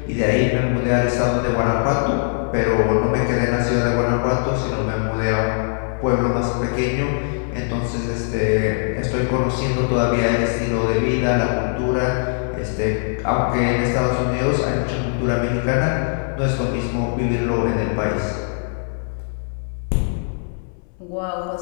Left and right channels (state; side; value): silent; right; 65 dB below the other